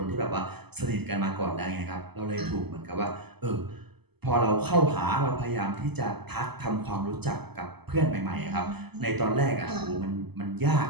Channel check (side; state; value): left; late; 0.98 ms